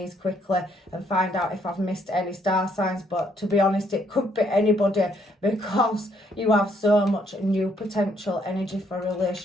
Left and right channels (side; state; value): both; normal; correlation 0.70